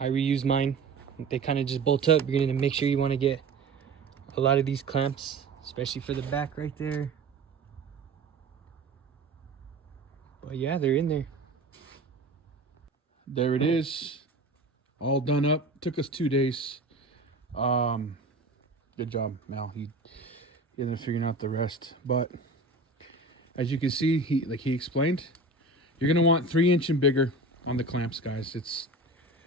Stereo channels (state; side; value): quieter; left; 3.1 dB